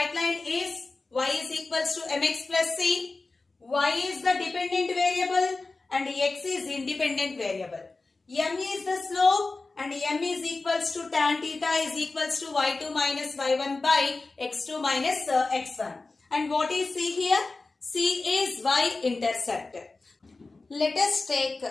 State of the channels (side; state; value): right; quieter; 3.6 dB